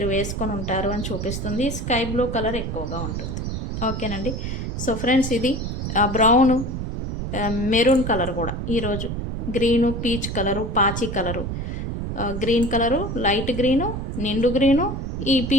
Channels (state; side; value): noise; right; rumble, 4 dB below the sound